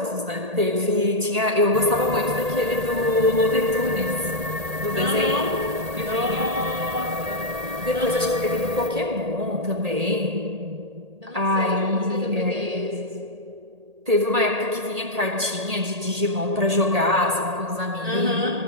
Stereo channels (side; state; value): left; late; 1.8 ms